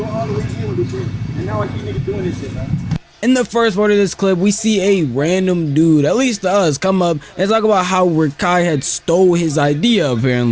all the way through this shit. And now I see niggas doing this shit. In the first part of this clip, we see a random dude, at least to us, come up and talk about how Rakai had stole his idea,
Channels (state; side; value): identical; both; correlation 1.00